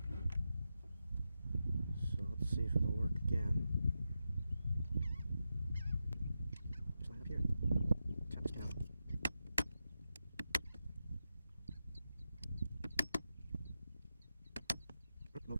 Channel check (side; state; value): both; inverted; correlation -0.89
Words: So let's see if it'll work again. Just line up here. Tap this pin out.